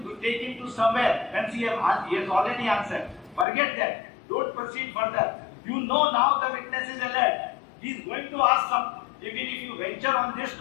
take him to somewhere when he has already answered. Forget that. Don't proceed further. You know now the witness is alert. He is going to ask something. Even if you venture on this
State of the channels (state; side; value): drops out; right; at 3.5 s